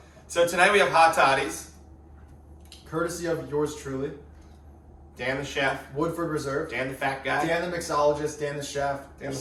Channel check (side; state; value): both; identical; correlation 1.00